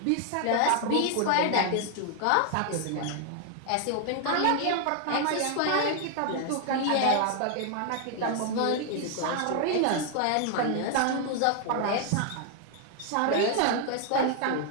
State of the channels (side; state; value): both; different; correlation 0.00